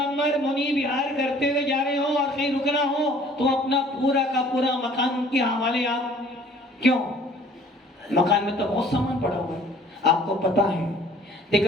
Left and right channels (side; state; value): both; normal; correlation 0.53